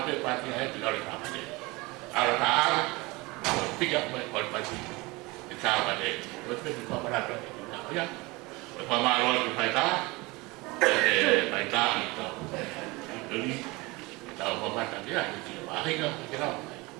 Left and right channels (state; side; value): quieter; left; 23.7 dB